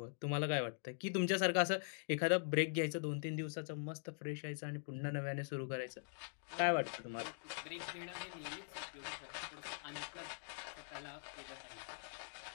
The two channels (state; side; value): silent; right; digital silence